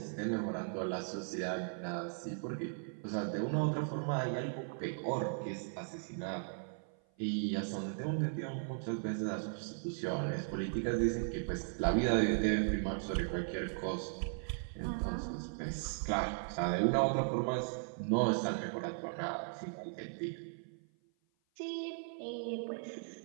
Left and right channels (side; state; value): left; silent; 53 dB below the other